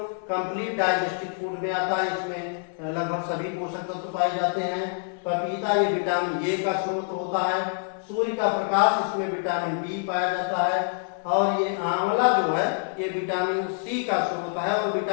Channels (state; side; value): silent; right; 61 dB below the other